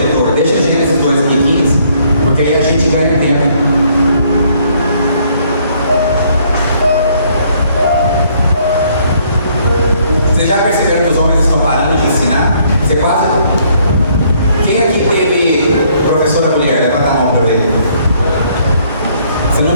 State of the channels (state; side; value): inverted; both; correlation -0.66